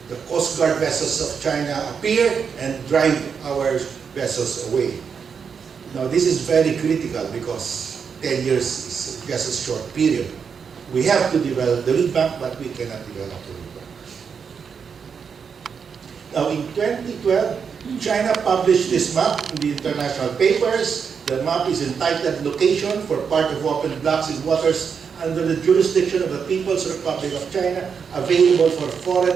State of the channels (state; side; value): quieter; left; 6.4 dB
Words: the Coast Guard vessels of China appear and drive our vessels away. Now this is very critical because 10 years is just a short period. We have to develop the reed bank, but we cannot develop the reed bank. Now in 2012, China published this map in the international papers. The map is entitled Location for Part of Open Blocks in Waters under the Jurisdiction of the People's Republic of China, available for